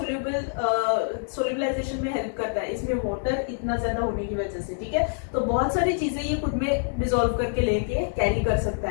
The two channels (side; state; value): right; silent; digital silence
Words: में हेल्प करता है, इसमें वाटर इतना ज्यादा होने की वजह से। ठीक है, तो बहुत सारी चीजें ये खुद में डिसॉल्व करके लेके कैरी कर सकता